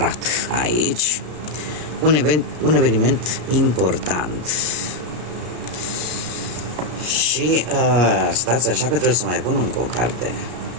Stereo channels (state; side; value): late; left; 33 ms